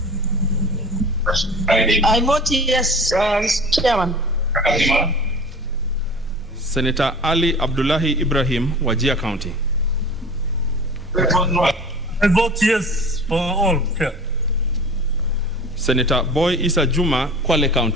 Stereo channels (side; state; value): both; normal; correlation 0.39